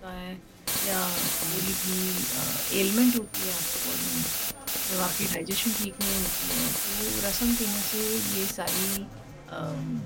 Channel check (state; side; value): identical; both; correlation 1.00